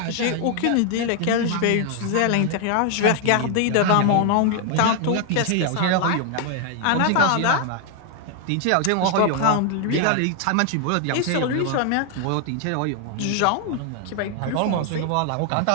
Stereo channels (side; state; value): both; different; correlation 0.00